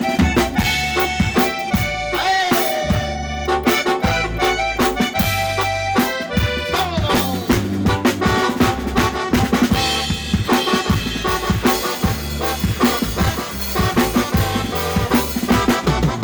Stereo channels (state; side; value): identical; both; correlation 1.00